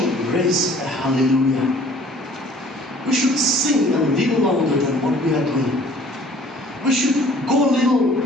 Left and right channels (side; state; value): both; normal; correlation 0.53